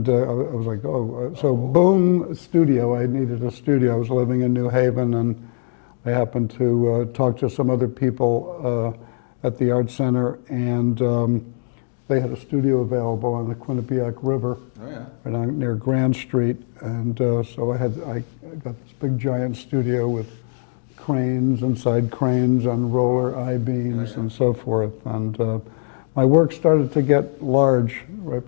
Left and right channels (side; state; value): right; silent; digital silence